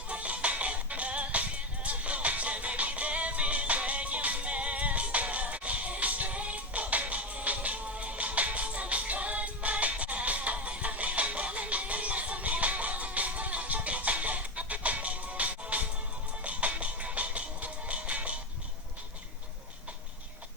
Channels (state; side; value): normal; both; correlation 0.17